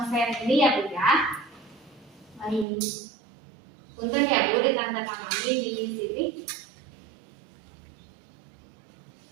ini ya Bu ya. Baik. Punten ya Bu, ditandatangani di sini.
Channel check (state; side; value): drops out; left; at 2.7 s